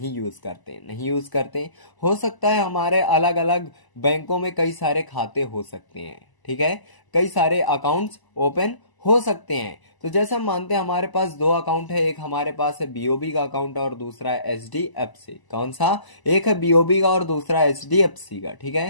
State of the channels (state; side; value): late; right; 1.0 ms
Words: यूज करते। हो सकता है हमारे अलग अलग बैंकों में कई सारे खाते हो सकते हैं, ठीक है, कई सारे अकाउंट्स ओपन हो सकते हैं। तो जैसे हम मानते हैं हमारे पास दो अकाउंट है, एक हमारे पास है बीओबी का अकाउंट और दूसरा है एचडीएफसी। कौन सा? एक है बीओबी का और दूसरा एचडीएफसी का, ठीक